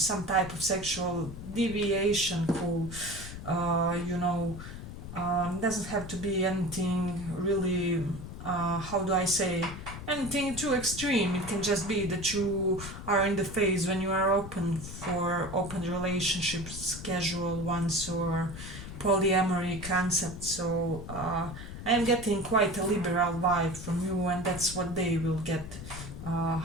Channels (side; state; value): left; noise; rumble, 10 dB below the sound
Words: type of sexual deviation. Who, doesn't have to be anything really, how do I say, anything too extreme. It can just be that you are in the phase when you are open for open relationships, casual ones, or polyamory concept. So I am getting quite a liberal vibe from you, and that's what they will get.